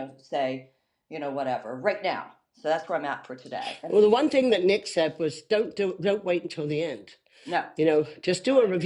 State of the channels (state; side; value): identical; both; correlation 1.00